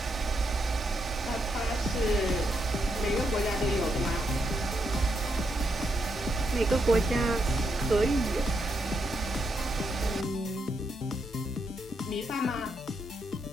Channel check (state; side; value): normal; both; correlation 0.80